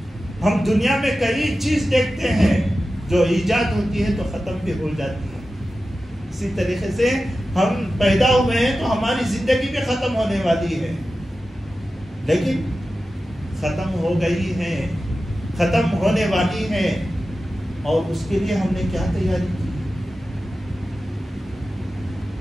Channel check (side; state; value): both; normal; correlation 0.93